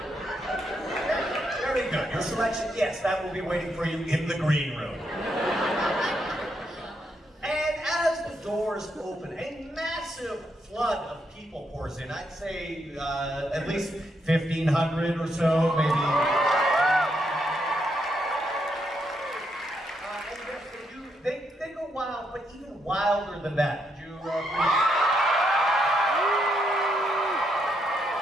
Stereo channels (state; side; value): normal; both; correlation 0.78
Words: Very good. Your selection, yes, that will be waiting for you in the green room. And as the doors open, a massive flood of people pours in. I'd say at least 1,500 or so, maybe. And yes, they go wild, but even wilder than that. Would you